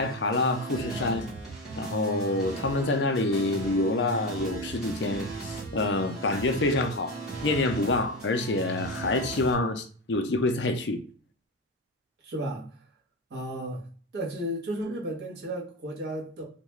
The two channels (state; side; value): normal; both; correlation 0.18